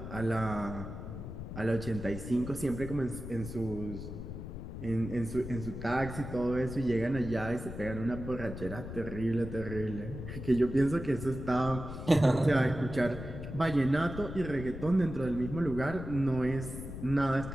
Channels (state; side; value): noise; left; rumble, 8 dB below the sound